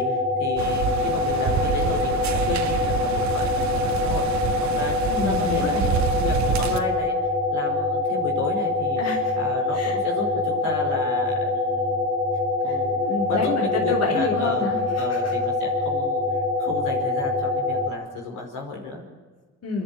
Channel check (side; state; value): both; normal; correlation 0.15